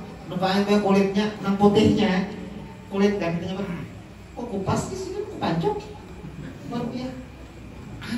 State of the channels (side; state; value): both; identical; correlation 1.00